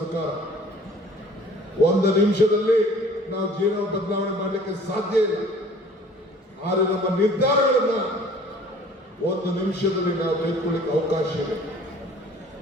ಒಂದು ನಿಮಿಷದಲ್ಲಿ ನಾವು ಜೀವನ ಬದಲಾವಣೆ ಮಾಡಲಿಕ್ಕೆ ಸಾಧ್ಯ ಇಲ್ಲ. ಆದರೆ ನಮ್ಮ ನಿರ್ಧಾರಗಳನ್ನ ಒಂದು ನಿಮಿಷದಲ್ಲಿ ನಾವು ತೆಗೆದುಕೊಳ್ಳಿಕ್ಕೆ ಅವಕಾಶ ಇದೆ.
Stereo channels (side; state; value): both; normal; correlation 0.51